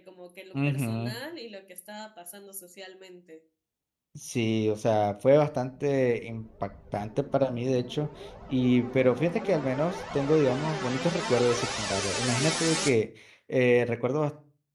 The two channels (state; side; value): identical; both; correlation 1.00